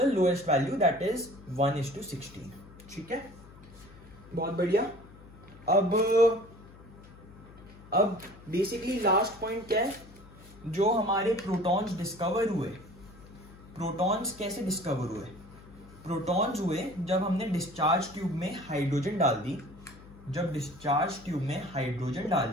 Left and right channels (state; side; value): noise; left; hum, 20 dB below the sound